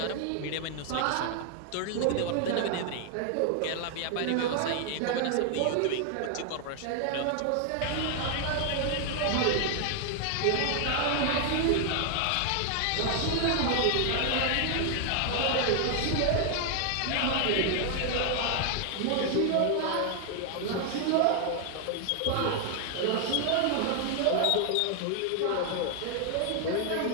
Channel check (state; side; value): different; both; correlation 0.00